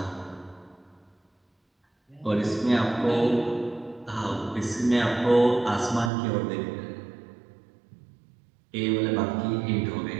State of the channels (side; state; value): left; drops out; at 6.1 s